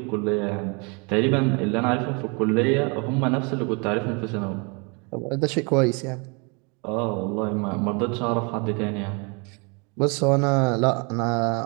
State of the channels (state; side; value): quieter; left; 32.2 dB